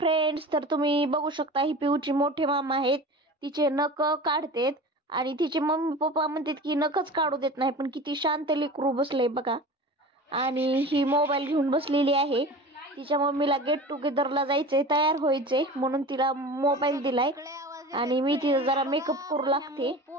तर तुम्ही बघू शकता ही पिऊची मोठे मामा आहेत. तिचे नख काढतेत आणि तिचे मम्मी पप्पा म्हणतात की नखच काढू देत नाही, पण किती शांत लेकरू बसले बघा. आणि ही मोबाईल घेऊन बसलेली आहे. तिच्या मम्मीला गेट टुगेदरला जायचंय, तयार व्हायचंय म्हणून तिला मोबाईल दिलाय. आणि मी तिचा जरा मेकअप करू लागते,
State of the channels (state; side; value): normal; both; correlation 0.35